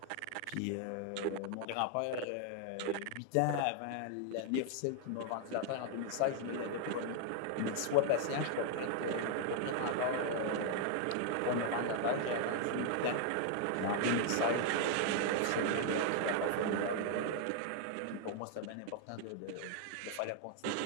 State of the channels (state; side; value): different; both; correlation 0.00